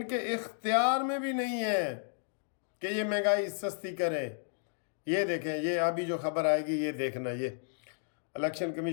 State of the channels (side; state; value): right; silent; digital silence